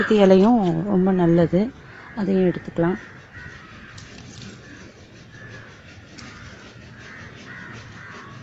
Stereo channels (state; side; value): identical; both; correlation 1.00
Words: இலையும் ரொம்ப நல்லது, அதையும் எடுத்துக்கலாம்.